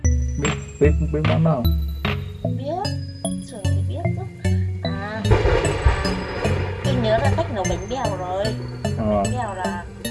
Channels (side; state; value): both; identical; correlation 1.00